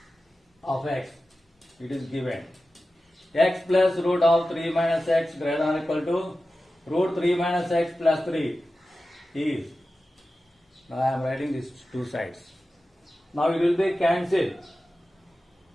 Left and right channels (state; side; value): normal; both; correlation 0.94